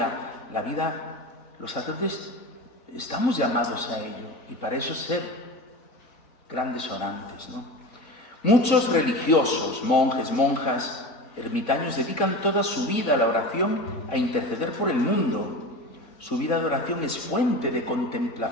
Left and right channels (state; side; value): late; right; 3.9 ms